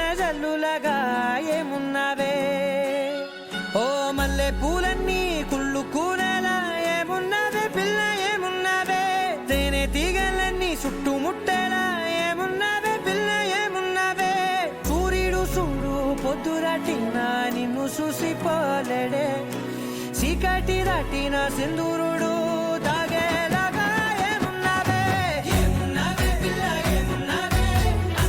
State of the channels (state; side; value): identical; both; correlation 1.00